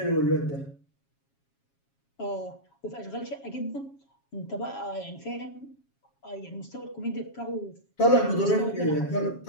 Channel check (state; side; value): late; right; 7.3 ms